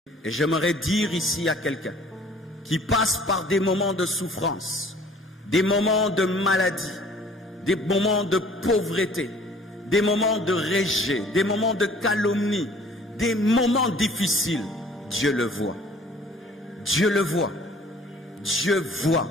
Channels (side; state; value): both; normal; correlation 0.53